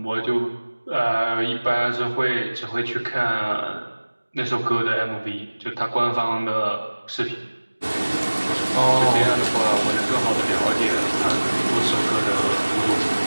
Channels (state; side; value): inverted; both; correlation -1.00